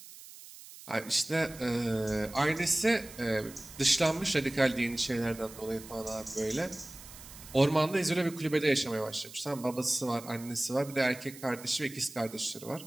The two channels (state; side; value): noise; right; hiss, 17 dB below the sound